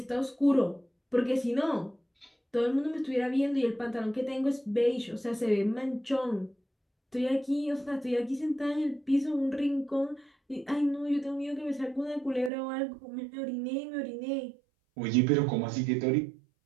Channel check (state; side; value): drops out; left; at 12.5 s